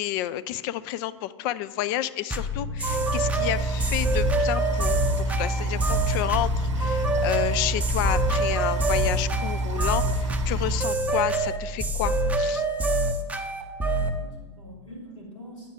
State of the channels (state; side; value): normal; both; correlation 0.34